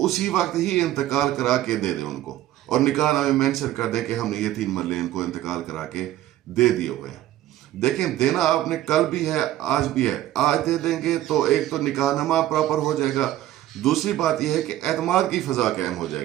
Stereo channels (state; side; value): quieter; left; 14.0 dB